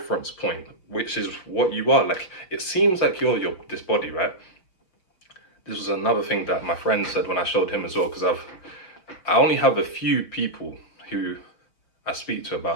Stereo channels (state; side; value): late; right; 5.6 ms